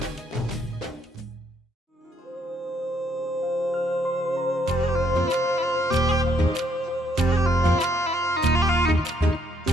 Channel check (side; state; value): both; normal; correlation 0.70